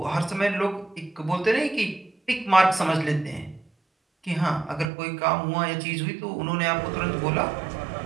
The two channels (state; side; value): drops out; left; at 4.9 s